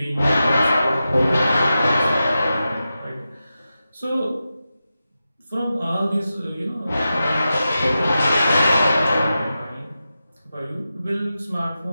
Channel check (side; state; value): both; inverted; correlation -0.91